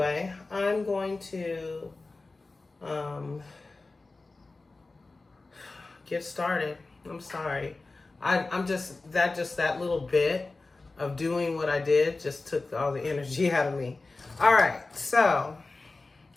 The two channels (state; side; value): quieter; right; 3.5 dB